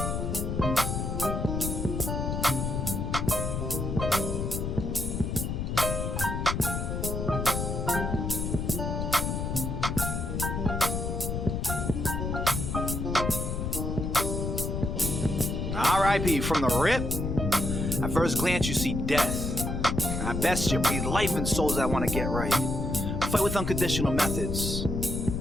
R.I.P. from the rip. At first glance, you see death. At best, you breathe life in souls that want to get right. Fight with unconditional methods.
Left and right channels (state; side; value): noise; left; rumble, 2 dB below the sound